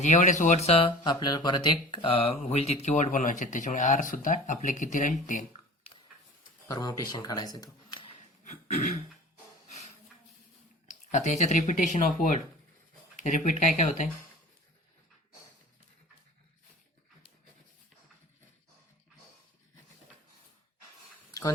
एवढेच वर्डचं आपल्याला परत एक होईल तितके वर्ड बनवायचे. त्याच्यामुळे आर सुद्धा आपले किती राहील? 10. परमुटेशन काढायचं तो. आता याच्यात रिपिटेशन ऑफ वर्ड. रिपीट काय काय होत आहे?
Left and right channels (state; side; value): normal; both; correlation 0.40